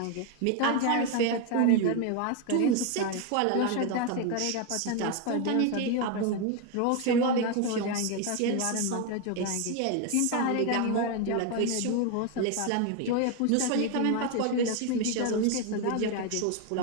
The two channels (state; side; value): different; both; correlation 0.01